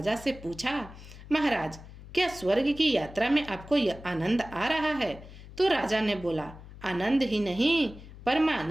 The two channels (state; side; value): noise; left; hum, 16 dB below the sound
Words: से पूछा, महाराज क्या स्वर्ग की यात्रा में आपको यह आनंद आ रहा है? तो राजा ने बोला, आनंद ही नहीं